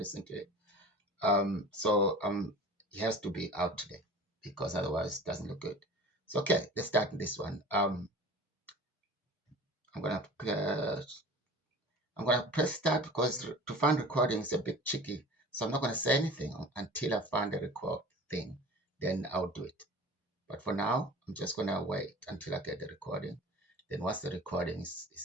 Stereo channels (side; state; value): both; normal; correlation 0.40